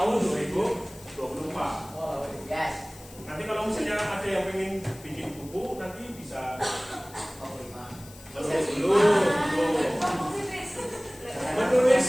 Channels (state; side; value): noise; left; hiss, 20 dB below the sound